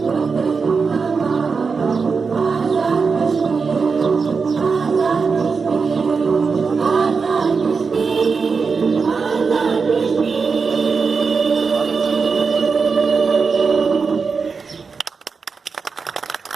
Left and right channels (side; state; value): left; quieter; 5.1 dB